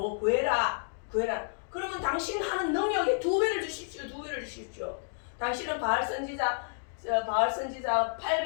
구해라. 그러면 당신 하는 능력에 2배를 주십시오. 당신은 바알 선지자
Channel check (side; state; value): right; silent; 57 dB below the other